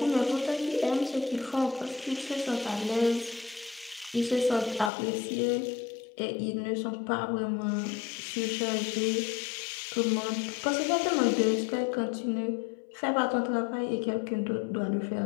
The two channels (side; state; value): right; drops out; at 4.9 s